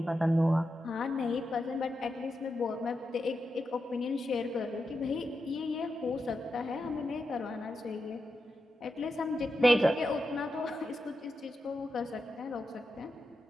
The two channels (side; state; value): both; normal; correlation 0.88